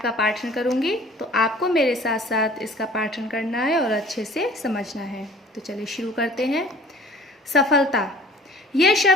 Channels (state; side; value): normal; both; correlation 0.50